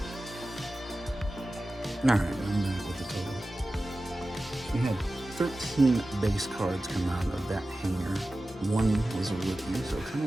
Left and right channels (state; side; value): normal; both; correlation 0.95